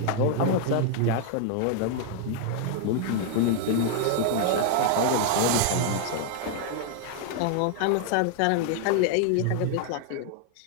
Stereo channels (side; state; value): both; different; correlation 0.00